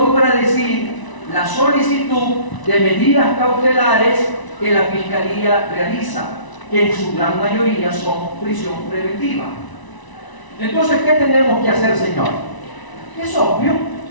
la solicitud de medidas cautelares que la Fiscalía realiza, que en su gran mayoría son prisión preventiva. Entonces, ¿qué tenemos que hacer, señor? Es obvio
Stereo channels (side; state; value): right; late; 1.0 ms